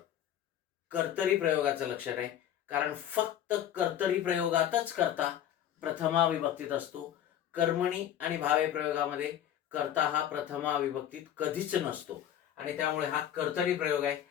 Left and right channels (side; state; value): right; quieter; 10.7 dB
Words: कर्तरी प्रयोगाचं लक्षण आहे. कारण फक्त कर्तरी प्रयोगातच कर्ता प्रथमा विभक्तीत असतो. कर्मणी आणि भावे प्रयोगामध्ये कर्ता हा प्रथमा विभक्तीत कधीच नसतो. आणि त्यामुळे हा कर्तरी प्रयोग आहे.